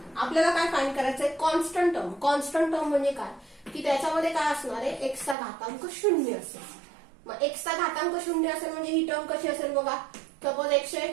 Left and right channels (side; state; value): left; drops out; at 5.4 s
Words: आपल्याला काय फाइंड करायचंय कॉन्स्टंट टर्म. कॉन्स्टंट टर्म म्हणजे काय की त्याच्यामध्ये काय असणार आहे x चा घातांक 0 असेल. मग x चा घातांक 0 असेल म्हणजे ही टर्म कशी असेल बघा. Suppose